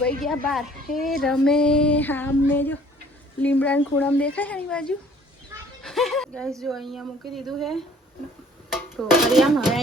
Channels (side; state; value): both; normal; correlation 0.55